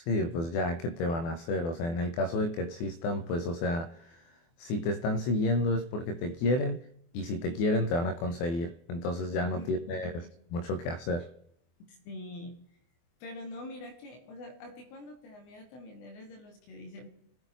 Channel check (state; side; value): late; right; 24 ms